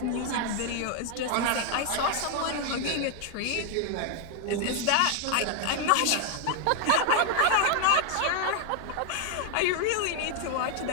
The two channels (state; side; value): different; both; correlation 0.00